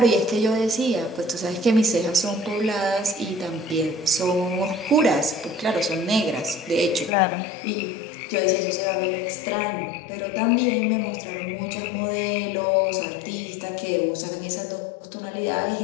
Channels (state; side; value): drops out; right; at 7.1 s